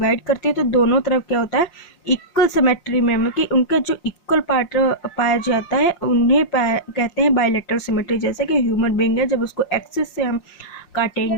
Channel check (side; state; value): right; late; 5.7 ms